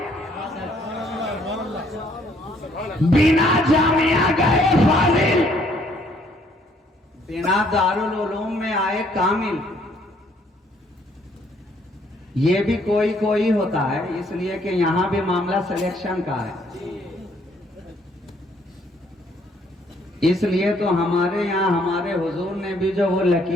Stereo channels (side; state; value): both; normal; correlation 0.65